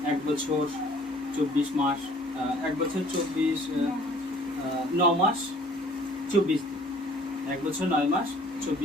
1 বছর 24 মাস, 1 বছর 9 মাস 24 দিন, 1 বছর 9 মাস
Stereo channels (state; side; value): normal; both; correlation 0.54